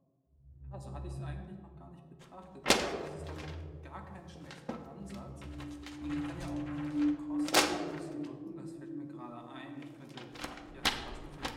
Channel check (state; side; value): identical; both; correlation 1.00